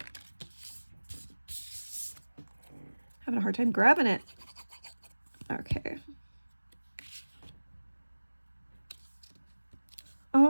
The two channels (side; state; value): both; inverted; correlation -1.00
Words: Having a hard time grabbing it. Okay.